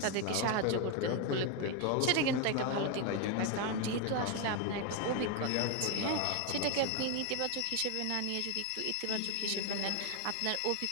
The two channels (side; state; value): both; different; correlation 0.01